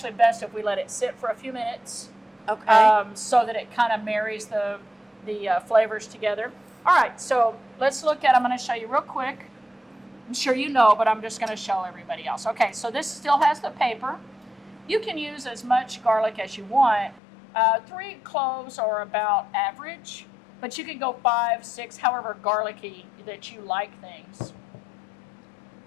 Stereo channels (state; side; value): drops out; right; at 17.2 s